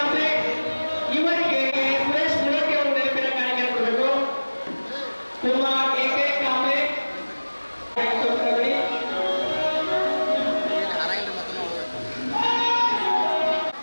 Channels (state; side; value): inverted; both; correlation -1.00